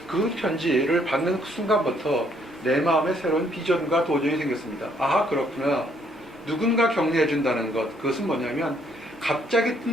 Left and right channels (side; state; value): both; normal; correlation 0.68